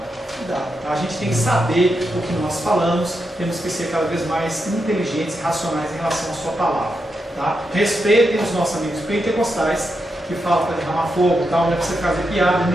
Tá? A gente tem que saber o que nós falamos, temos que ser cada vez mais inteligentes e racionais em relação à sua palavra. Tá? Respeitem os nossos amigos pentecostais, que falam para derramar fogo e tal, não é para você fazer piada,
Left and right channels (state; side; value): normal; both; correlation 0.85